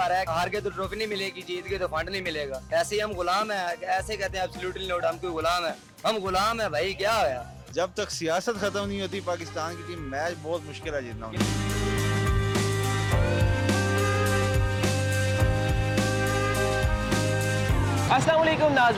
रहा है, हार के तो ट्रॉफी नहीं मिलेगी, जीत के तो फंड नहीं मिलेगा। ऐसे ही हम गुलाम है, ऐसे कहते हैं एब्सोल्युटली नॉट, हम कोई गुलाम है, हम गुलाम है भाई। क्या होया? जब तक सियासत खत्म नहीं होती पाकिस्तान की टीम मैच बहुत मुश्किल है जीतना। अस्सलाम वालेकुम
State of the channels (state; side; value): identical; both; correlation 1.00